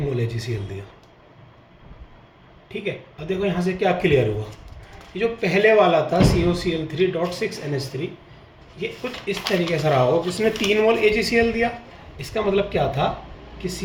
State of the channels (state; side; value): identical; both; correlation 1.00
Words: AgCl दिया। ठीक है, अब देखो यहाँ से क्या क्लियर हुआ, ये जो पहले वाला था COCl3.6NH3, ये कुछ इस तरीके से रहा हो, जिसने 3 मोल AgCl दिया, इसका मतलब क्या था कि